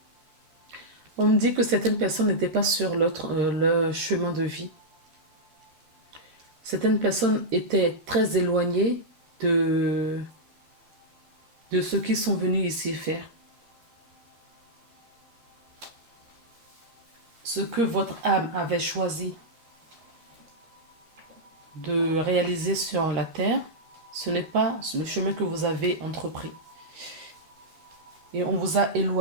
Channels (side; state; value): left; late; 13 ms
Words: On me dit que certaines personnes n'étaient pas sur le chemin de vie. Certaines personnes étaient très éloignées de ceux qui sont venus ici faire. Ce que votre âme avait choisi de réaliser sur la terre, ce n'est pas le chemin que vous avez entrepris. Et on vous a